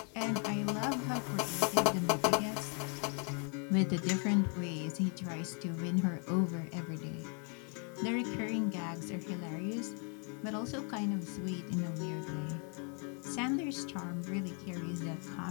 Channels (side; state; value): right; quieter; 39.2 dB